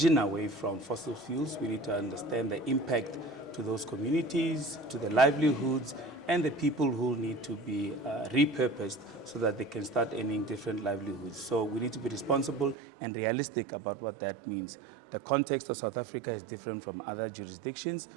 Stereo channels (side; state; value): left; drops out; at 12.8 s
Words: away from fossil fuels, we need to understand the impact to those communities, to the livelihoods, and the people who need to be repurposed so that they can start earning different livelihoods. So we need to be responsible and realistic about what that means. The context of South Africa is different from other jurisdictions,